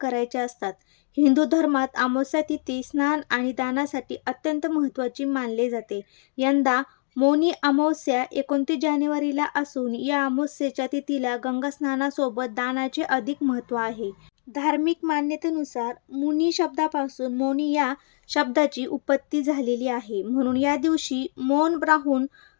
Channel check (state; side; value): silent; right; 56 dB below the other